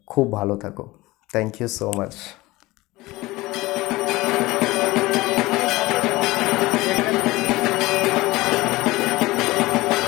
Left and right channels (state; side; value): quieter; right; 20.0 dB